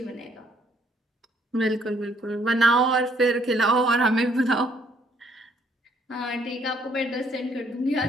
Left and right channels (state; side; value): normal; both; correlation 0.66